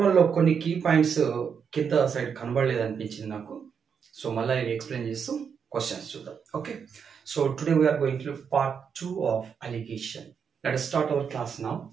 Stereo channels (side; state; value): left; quieter; 6.8 dB